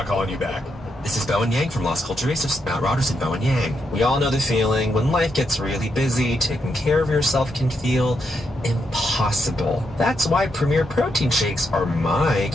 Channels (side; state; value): both; normal; correlation 0.81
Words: calling you back. This is Bowen Yang from Lost Culture Racists, Matt Rodgers and Bowen Yang. We all know the feeling when life gets really busy, taking care of yourself can feel impossible. That's why Premier Protein Shakes are my